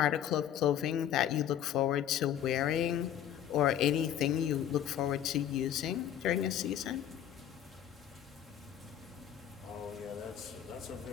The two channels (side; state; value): right; quieter; 10.2 dB